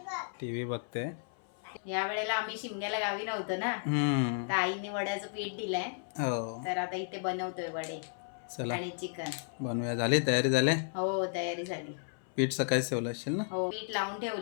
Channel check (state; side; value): silent; right; 55 dB below the other